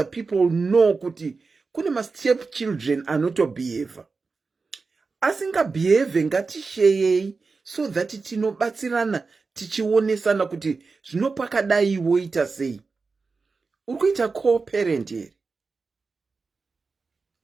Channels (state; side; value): quieter; left; 4.3 dB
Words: people know kuti kune ma stepchildren anotobehave. Asingabehave ngatishare so that tinobatsirana tichionesana kuti zvinopakadai woita sei. Urikuita co-parent here.